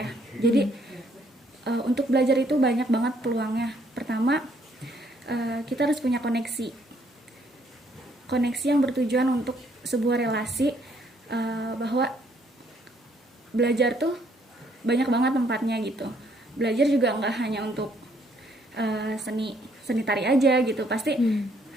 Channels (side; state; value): both; normal; correlation 0.68